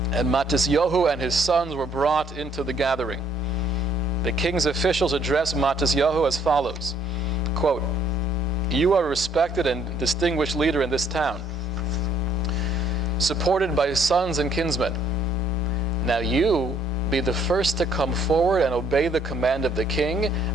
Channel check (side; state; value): both; normal; correlation 0.65